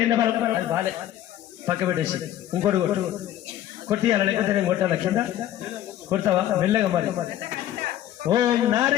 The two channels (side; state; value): right; quieter; 12.4 dB